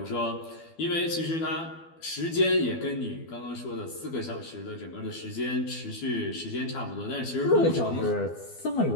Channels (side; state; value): right; late; 12 ms